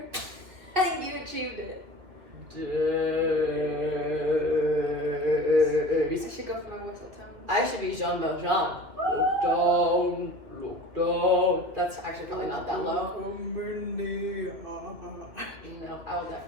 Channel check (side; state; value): left; late; 2.6 ms